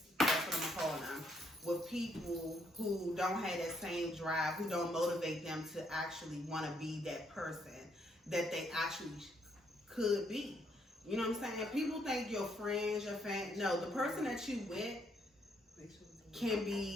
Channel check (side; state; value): both; normal; correlation 0.72